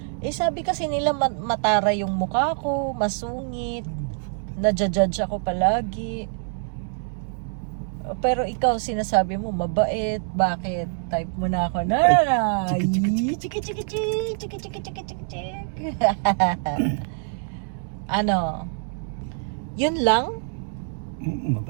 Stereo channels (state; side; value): silent; left; 62 dB below the other